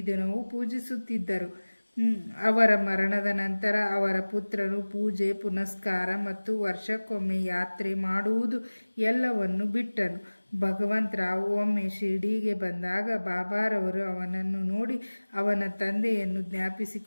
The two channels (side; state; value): both; inverted; correlation -1.00